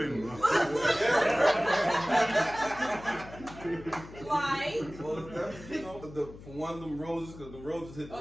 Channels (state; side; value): noise; left; hum, 16 dB below the sound